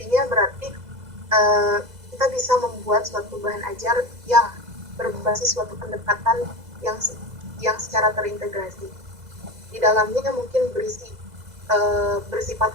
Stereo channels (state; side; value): late; left; 2.0 ms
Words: berarti kita bisa membuat suatu bahan ajar yang berbasis suatu pendekatan yang secara terintegrasi. Di dalamnya mungkin bersifat